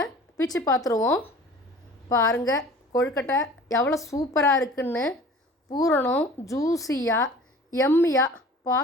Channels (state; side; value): normal; both; correlation 0.45